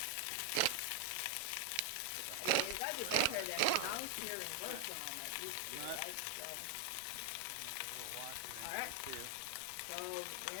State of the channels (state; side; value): different; both; correlation 0.00